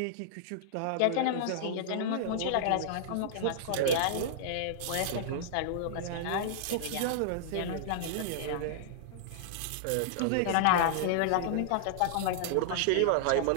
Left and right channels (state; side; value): different; both; correlation -0.01